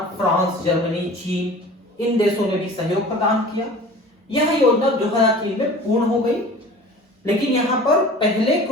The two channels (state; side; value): normal; both; correlation 0.42